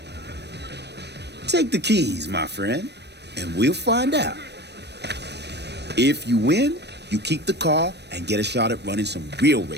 Take the keys, my friend, and we'll find out. If you win, you keep the car and get a shot at running some real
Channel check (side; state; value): left; late; 0.49 ms